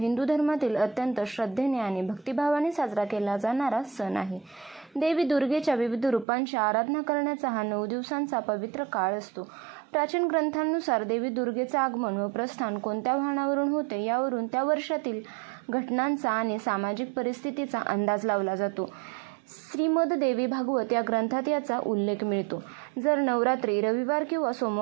धर्मातील अत्यंत श्रद्धेने आणि भक्तिभावाने साजरा केला जाणारा सण आहे। देवी दुर्गेच्या विविध रूपांची आराधना करण्याचा हा 9 दिवसांचा पवित्र काळ असतो। प्राचीन ग्रंथांनुसार देवी दुर्गेचे आगमन व प्रस्थान कोणत्या वाहनावरून होते यावरून त्या वर्षातील घटनांचा आणि सामाजिक परिस्थितीचा अंदाज लावला जातो। श्रीमद देवी भागवत या ग्रंथात याचा उल्लेख मिळतो। जर नवरात्री रविवार किंवा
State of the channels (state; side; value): drops out; left; at 6.2 s